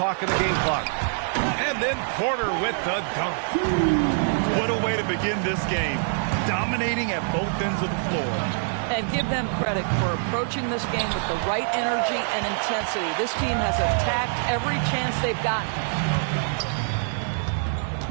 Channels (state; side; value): silent; left; digital silence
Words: and the game clock. And then Porter with the dunk. What a way to begin this game. Dominating at both ends of the floor. And give them credit for approaching this game with the right energy and intensity. This team has attacked every chance they've gotten.